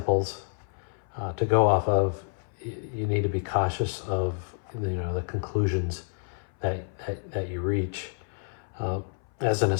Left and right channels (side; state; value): right; silent; 59 dB below the other